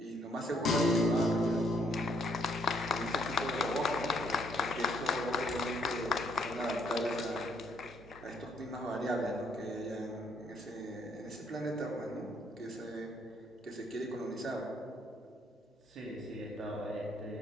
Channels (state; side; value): normal; both; correlation 0.68